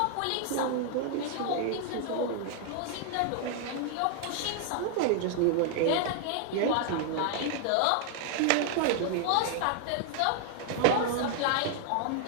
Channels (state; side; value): different; both; correlation 0.00